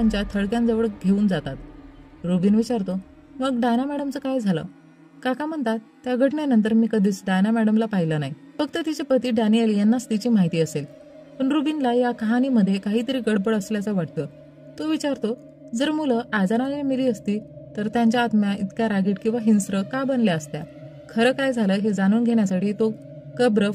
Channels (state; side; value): identical; both; correlation 1.00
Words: थडक्यांजवळ घेऊन जातात. रुबिन विचारतो, मग डायना मॅडमचं काय झालं? काका म्हणतात, त्या घटनेनंतर मी कधीच डायना मॅडमला पाहिलं नाही. फक्त तिचे पती डॅनियल यांनाच तिची माहिती असेल. पण रुबिनला या कहाणीमध्ये काहीतरी गडबड असल्याचं वाटतं. तो विचारतो, जर मुलं आजाराने मेली असती तर त्यांच्या आत्म्या इतक्या रागीट किंवा हिंस्र का बनल्या असत्या? खरं काय झालं हे जाणून घेण्यासाठी तो कब्र